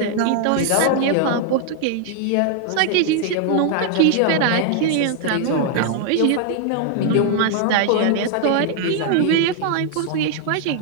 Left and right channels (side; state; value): both; different; correlation 0.00